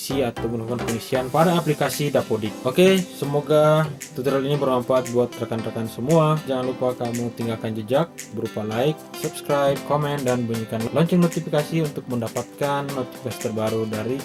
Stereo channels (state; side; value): identical; both; correlation 1.00